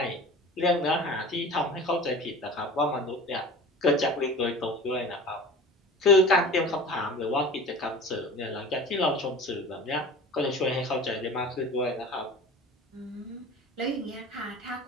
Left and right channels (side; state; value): both; normal; correlation 0.38